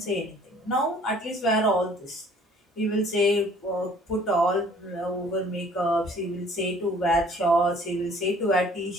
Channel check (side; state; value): both; normal; correlation 0.55